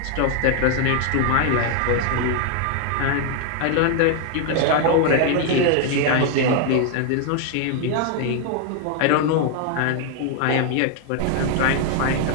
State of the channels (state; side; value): different; both; correlation 0.00